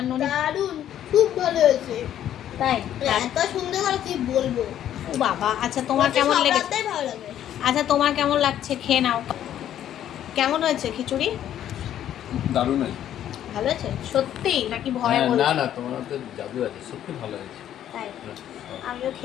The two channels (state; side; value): quieter; right; 11.0 dB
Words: ননি দারুণ, খুব ভালো হয়েছে। তাই এত সুন্দর করে কি বলবো। ও বাবা, আচ্ছা তোমার কেমন লেগেছে? ভালো লাগে। আচ্ছা তোমার কেমন লাগছে, খেয়ে নাও। কেমন হয়েছে খিচুড়ি? দারুণ হয়েছে। ভালো হয়েছে সত্যি নাকি ভয় বলছো? না না, তোমার তো জাদু আছে, সত্যি ভালো হয়েছে। তাই আমিও